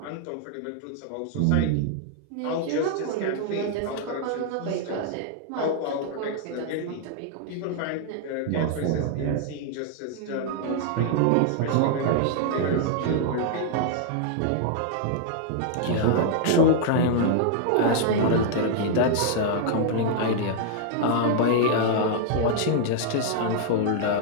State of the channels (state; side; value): different; both; correlation 0.00